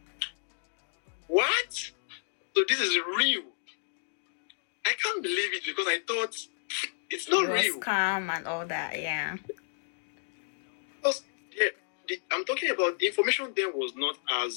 What? So this is real. I can't believe it because I thought it's not real. It was calm and all that, yeah. Because, I'm talking about the information then was not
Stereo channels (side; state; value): right; silent; digital silence